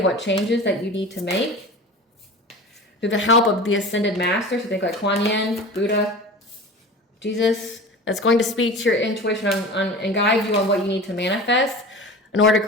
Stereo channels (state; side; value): normal; both; correlation 0.35